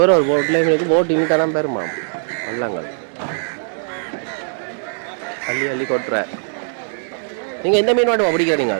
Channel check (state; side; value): silent; left; digital silence